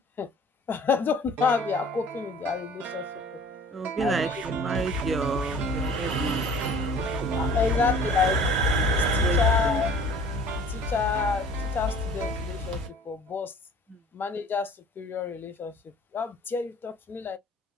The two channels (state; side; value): normal; both; correlation 0.49